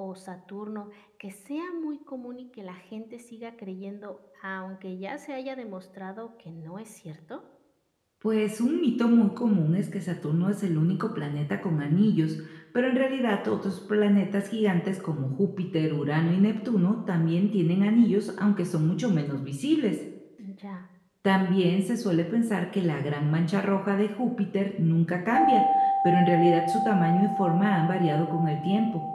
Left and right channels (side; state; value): both; identical; correlation 1.00